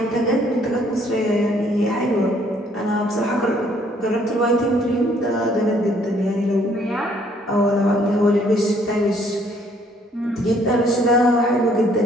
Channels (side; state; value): both; normal; correlation 0.64